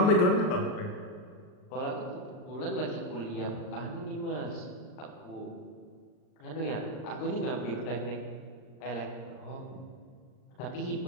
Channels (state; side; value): late; right; 39 ms